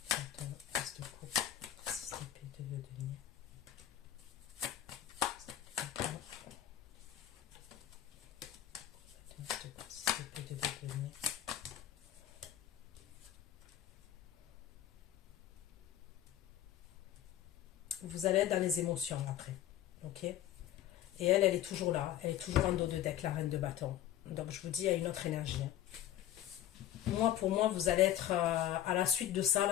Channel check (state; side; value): quieter; right; 12.1 dB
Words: 5 de bâton, as de coupe, 6 d'épée, 2 de denier. 5 de bâton, as de coupe, 6 d'épée, 2 de denier. Vous allez être dans les émotions après, ok? Et elle est toujours là, elle est toujours en dos de deck, la reine de bâton. Donc je vous dis, il y a une autre énergie. Moi, pour moi, vous allez être à la suite de ça,